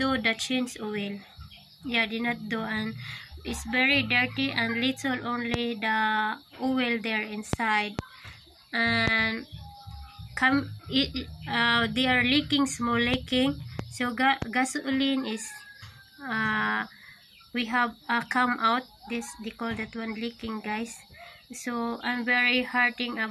do the change oil. Yeah, did not do, and it's very dirty and little only the oil there inside, and they are leaking, small leaking. So gasoline is we have come out, this they call that one leaking guys. So I'm very hurting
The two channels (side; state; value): both; identical; correlation 1.00